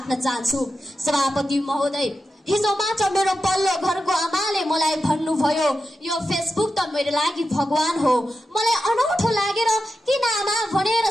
चाहन्छु। सभापति महोदय, हिजो मात्र मेरो पल्लो घरको आमाले मलाई भन्नुभयो, यो फेसबुक त मेरो लागि भगवान हो। मलाई अनौठो लागेर किन आमा भनेर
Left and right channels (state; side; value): normal; both; correlation 0.90